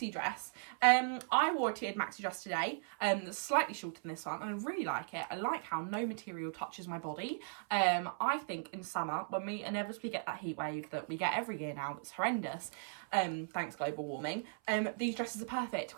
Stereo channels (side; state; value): left; silent; 53 dB below the other